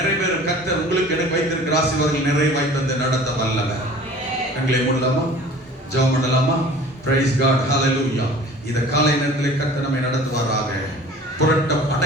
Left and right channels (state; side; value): normal; both; correlation 0.45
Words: கர்த்தர் உங்களுக்கு எனக்கு வைத்திருக்கிற ஆசீர்வாதங்கள் நிறைவாய் தந்து நடத்த வல்லவர். கண்களை மூடலாமா? ஜெபம் பண்ணலாமா? Praise God. ஹalleluya. இந்த காலை நேரத்தில் கர்த்தர் நம்மை நடத்துவாராக.